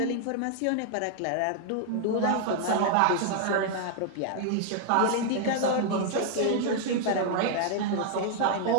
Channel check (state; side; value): different; both; correlation 0.00